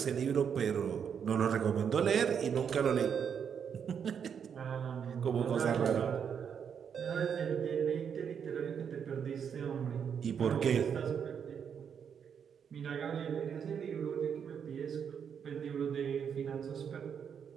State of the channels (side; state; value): left; quieter; 7.5 dB